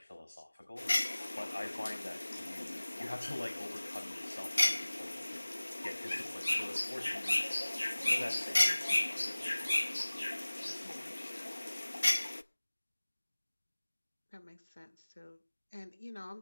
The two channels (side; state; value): both; inverted; correlation -1.00